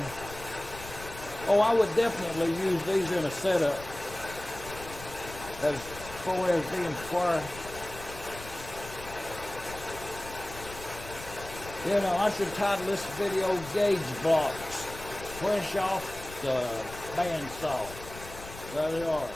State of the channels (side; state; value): left; noise; rumble, 14 dB below the sound